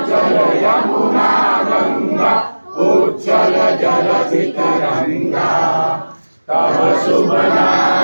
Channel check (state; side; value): inverted; both; correlation -1.00